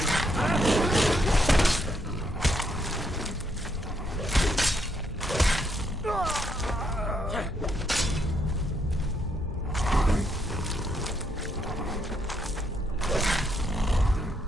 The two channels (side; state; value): both; normal; correlation 0.75